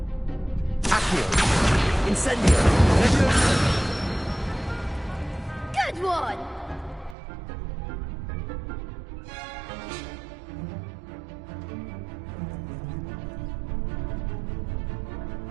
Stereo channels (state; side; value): drops out; left; at 7.2 s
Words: Accio! Incendio! Good one!